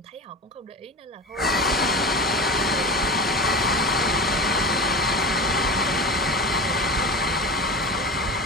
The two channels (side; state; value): both; normal; correlation 0.31